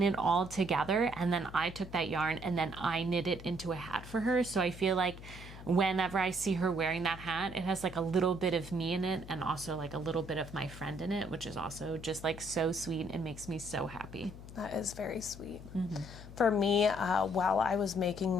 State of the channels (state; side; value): noise; left; hum, 14 dB below the sound